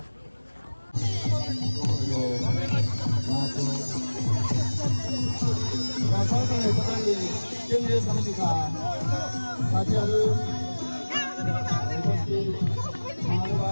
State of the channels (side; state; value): both; inverted; correlation -1.00